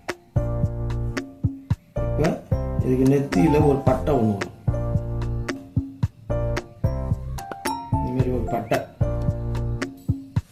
இதுக்கு நெத்தியில் ஒரு பட்டை ஒன்று வரும். இதுமாரி ஒரு பட்டை,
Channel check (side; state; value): both; identical; correlation 1.00